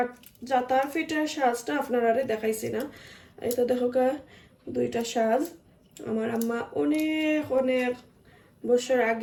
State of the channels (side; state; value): both; identical; correlation 1.00